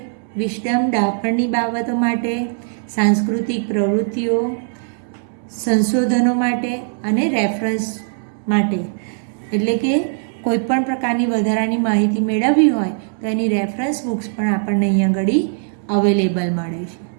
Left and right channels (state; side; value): silent; left; digital silence